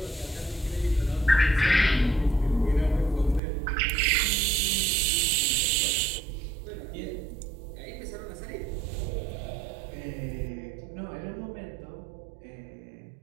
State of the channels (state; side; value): drops out; left; at 3.4 s